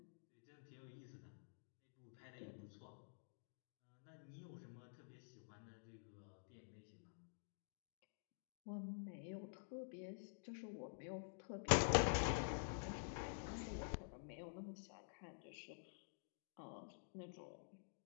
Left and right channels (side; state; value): right; silent; digital silence